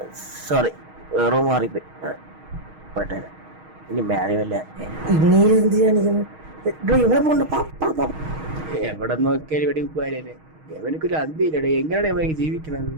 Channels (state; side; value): late; left; 6.4 ms